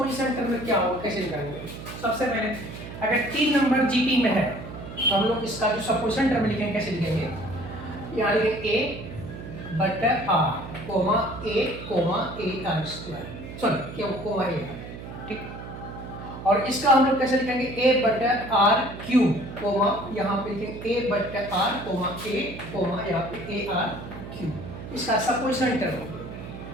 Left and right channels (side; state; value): right; noise; hum, 11 dB below the sound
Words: टर्म क्या होगा, कैसे निकालेंगे? सबसे पहले अगर 3 नंबर जीपी में है तो हम लोग इसका जो सपोजिशन टर्म लिखेंगे कैसे लिखेंगे? यहाँ लिखेंगे ए बटा r comma a r square, sorry क्या कोमा ए, ठीक। और इसका हम लोग कैसे लिखेंगे? ए बटा आर क्यूब कोमा यहाँ पे लिखेंगे ए बटा आर कोमा यहाँ पे ए आर क्यूब। इसका सपोजिशन टर्म होगा।